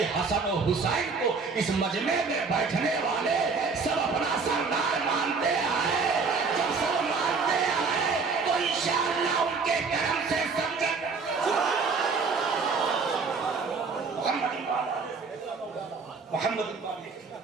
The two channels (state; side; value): quieter; left; 4.8 dB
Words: حسن و حسین کو اس مجمع میں بیٹھنے والے سب اپنا سردار مانتے ہیں۔ جب سب مانتے ہیں تو انشاءاللہ ان کے کرم سے سمجھے محمد